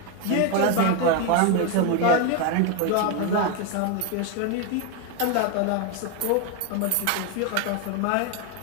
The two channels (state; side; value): different; both; correlation 0.02